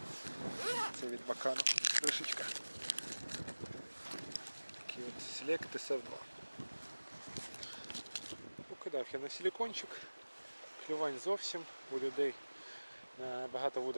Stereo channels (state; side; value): inverted; both; correlation -1.00